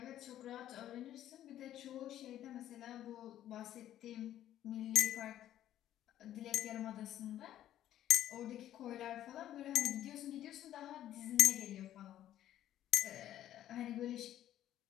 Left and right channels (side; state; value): right; quieter; 12.1 dB